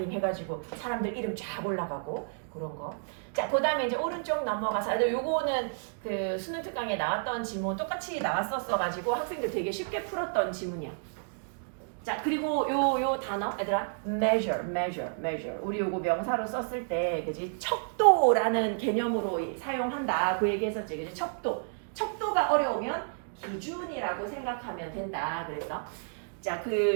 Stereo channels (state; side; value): silent; left; digital silence